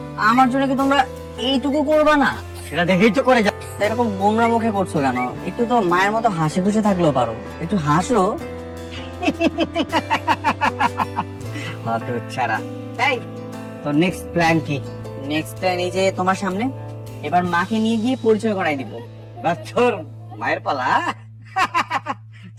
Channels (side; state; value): both; identical; correlation 1.00